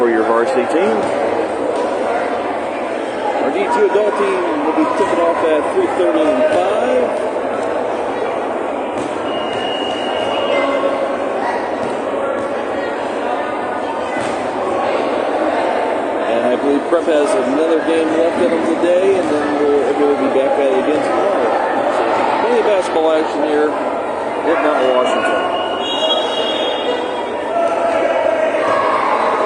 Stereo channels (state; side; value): identical; both; correlation 1.00